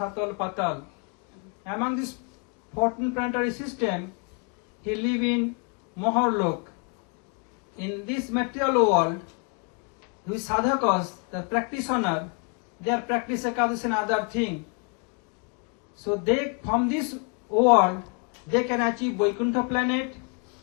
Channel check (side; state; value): right; quieter; 36.5 dB